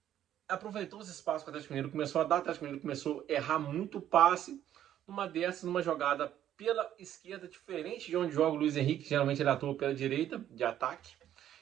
aproveitou os espaços que o Atlético Mineiro começou a dar. O Atlético Mineiro começou a errar muito passe. Numa jogada pela esquerda, diferente de onde joga o Luiz Henrique, geralmente ele atua pela direita, de ataque.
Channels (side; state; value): left; quieter; 11.2 dB